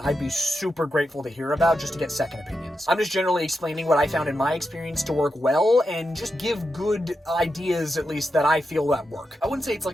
I'd be super grateful to hear about, just to get second opinions. I'm just generally explaining what I found in my experience to work well, and just give good ideas, at least, that I feel that work. I wouldn't say it's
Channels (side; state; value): both; normal; correlation 0.87